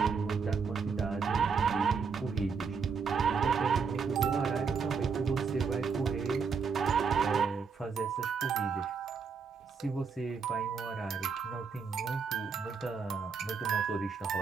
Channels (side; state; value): left; quieter; 5.6 dB